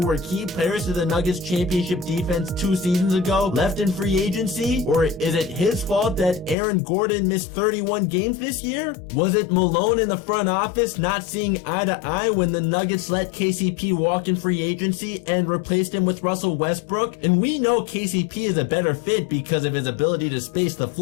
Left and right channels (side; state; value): right; drops out; at 6.6 s